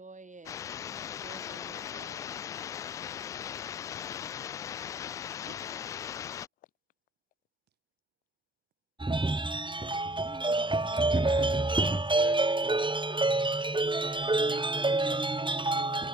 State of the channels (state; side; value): normal; both; correlation 0.53